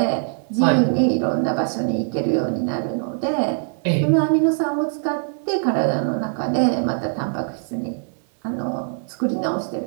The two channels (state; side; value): silent; left; 64 dB below the other